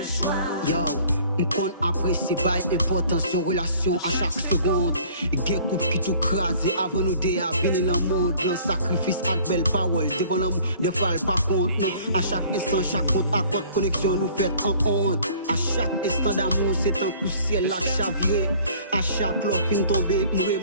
choix. Yo, m'kon apprécie pas importance de relation à chaque seconde. Gen couple qui tout crasé avant nous de venir dans le monde. Dans sacrifice avec belle parole, devant l'amour, des fois elle pas compte. Non, à chaque instant, chaque compte à compte connexion nous fait en honte. À chaque instant d'amour, c'est un coup ciel là chaviré. À chaque l'offre fin tomber, me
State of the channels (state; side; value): inverted; both; correlation -0.53